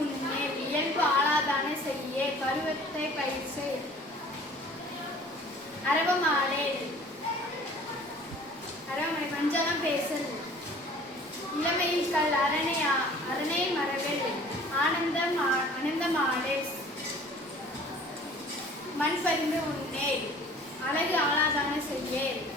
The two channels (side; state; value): both; normal; correlation 0.49